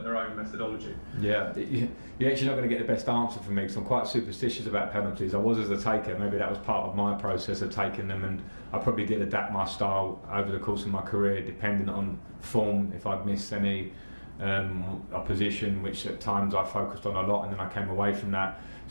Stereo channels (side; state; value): both; inverted; correlation -1.00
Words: their own methodology? Yeah, you're actually not going to get the best answer from me because I'm quite superstitious about penalties. I was as a taker, maybe that was part of my process of taking them, and I probably did adapt my style over the course of my career depending on form, if I'd missed any opposition, which at times I focused on a lot and then I came away from that.